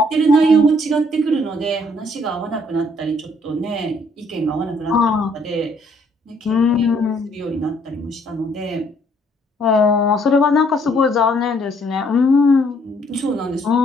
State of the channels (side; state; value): both; normal; correlation 0.65